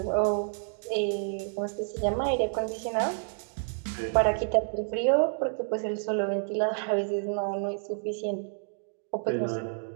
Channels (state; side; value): silent; left; digital silence